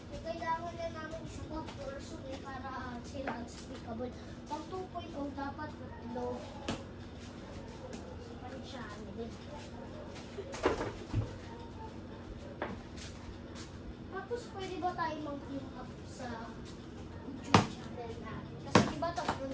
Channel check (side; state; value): both; identical; correlation 1.00